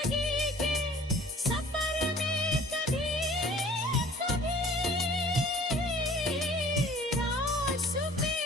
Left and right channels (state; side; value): normal; both; correlation 0.50